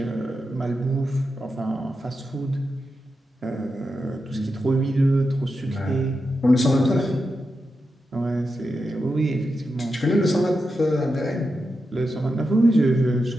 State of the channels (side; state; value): both; normal; correlation 0.88